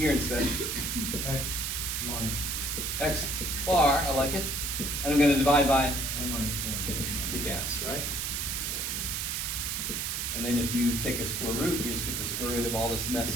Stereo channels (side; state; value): right; noise; hiss, 1 dB below the sound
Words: instead? X line. X bar. I like it. And I'm going to divide by M minus 1. the gas, right? And then if you take a square root, you just get the square root of all this